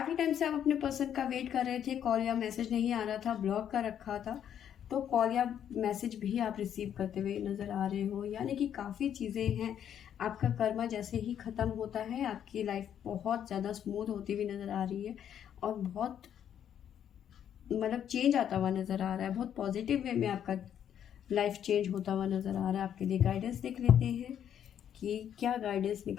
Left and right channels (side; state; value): right; quieter; 9.5 dB